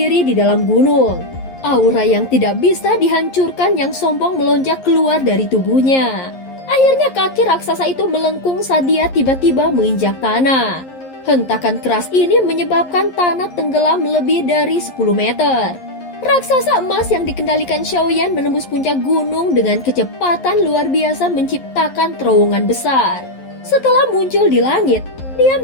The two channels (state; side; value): late; right; 11 ms